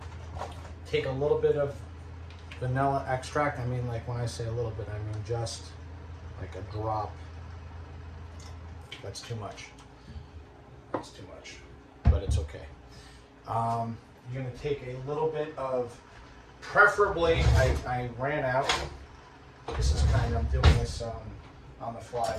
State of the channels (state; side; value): identical; both; correlation 1.00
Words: Take a little bit of vanilla extract. I mean, like when I say a little bit, I mean just like a drop. That's too much. That's too much, but it's okay. You're going to take a little bit of, preferably, I ran out. This is kind of, I'm doing this on the